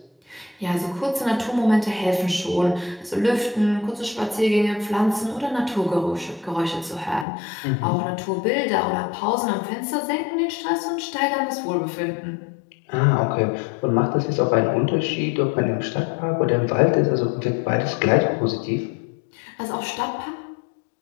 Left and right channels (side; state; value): right; drops out; at 7.2 s